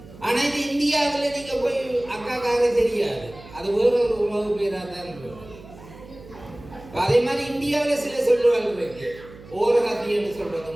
ஆனா இது இந்தியாவில் நீங்க போய் அக்காக்காரி தெரியாது, அது வேற ஒரு உறவு பேரா தான் இருக்கும். அதே மாதிரி இந்தியாவில் சில சொல்லுவாள் இருக்கு. ஓரகத்தி என்று சொல்றது,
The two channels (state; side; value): noise; right; hum, 19 dB below the sound